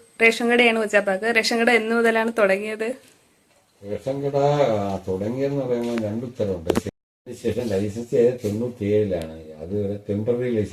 റേഷൻ കടയാണ് കൊച്ചാപ്പാക്ക്. റേഷൻ കട എന്ന് മുതലാണ് തുടങ്ങിയത്? റേഷൻ കട തുടങ്ങിയെന്ന് പറയുമ്പോൾ രണ്ടുത്തരമുണ്ട്. ശേഷം ലൈസൻസ് ചെയ്ത് 97-ലാണ്. അത് ടെമ്പററി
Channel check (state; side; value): identical; both; correlation 1.00